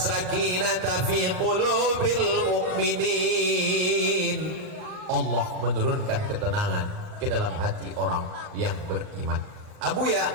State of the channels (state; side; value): late; left; 39 ms